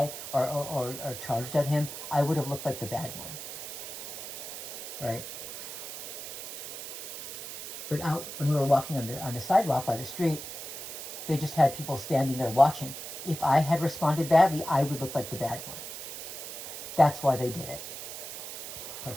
or charged at him, I would have looked like the bad one. Right? But out when we were walking on the sidewalk by the street, they just had people standing there watching. If I had responded badly, I would look like the bad one. That's why they did it. Okay.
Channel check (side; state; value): right; noise; hiss, 8 dB below the sound